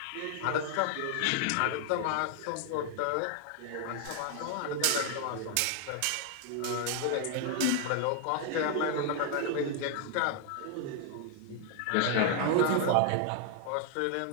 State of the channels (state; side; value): different; both; correlation 0.00